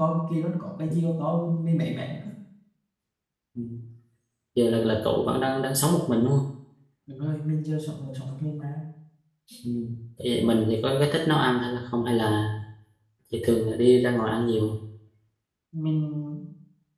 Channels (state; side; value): identical; both; correlation 1.00